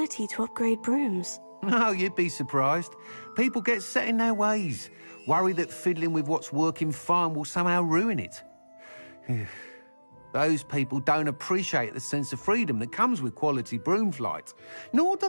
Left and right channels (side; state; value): both; inverted; correlation -1.00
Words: to upgrade brooms? No, you'd be surprised. People get set in their ways, worry that fiddling with what's working fine will somehow ruin it. Those people don't appreciate the sense of freedom that comes with quality broom flight, nor do